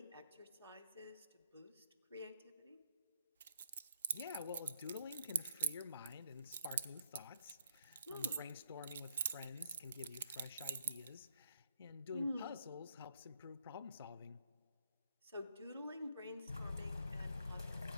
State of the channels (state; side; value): inverted; both; correlation -0.72